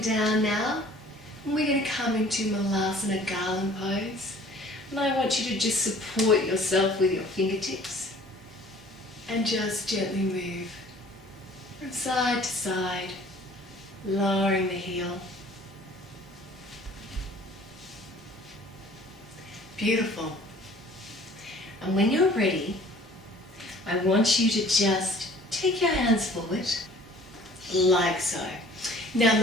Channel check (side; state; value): both; normal; correlation 0.51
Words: now. And we're going to come into Malasana Garland pose. And I want you to just support yourself with your fingertips. And just gently move from side to side, lowering the heel. Beautiful. And when you're ready, I want you to just take your hands forward, like so. Now,